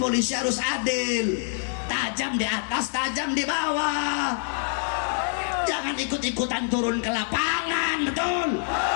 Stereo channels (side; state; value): right; silent; digital silence